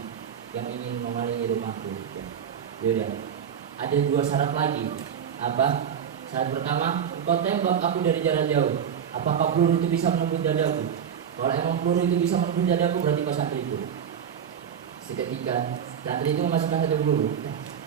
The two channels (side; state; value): left; quieter; 8.2 dB